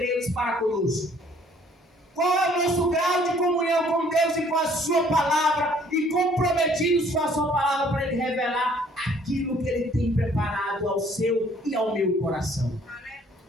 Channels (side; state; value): both; normal; correlation 0.59